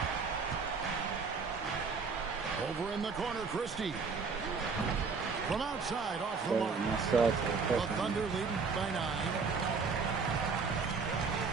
Over in the corner, Christie. From outside, off the mark. The Thunder leading by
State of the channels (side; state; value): left; quieter; 5.0 dB